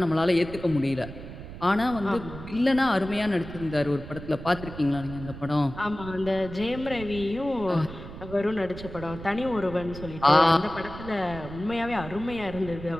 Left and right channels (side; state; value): right; noise; rumble, 12 dB below the sound